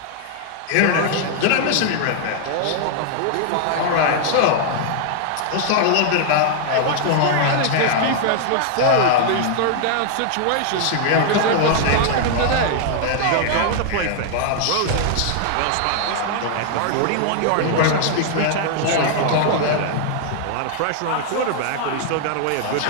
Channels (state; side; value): different; both; correlation 0.00